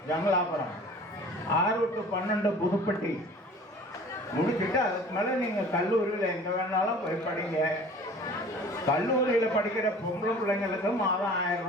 ஜமலாபுரம், 6 to 12 புதுப்பட்டி முடிச்சுட்டு அதுக்கு மேலே நீங்கள் கல்லூரியில் எங்கே வேணாலும் போய் படிங்க. கல்லூரியில் படிக்கிற பொம்பளை பிள்ளைங்களுக்கும் மாதம் 1000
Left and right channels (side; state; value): both; normal; correlation 0.45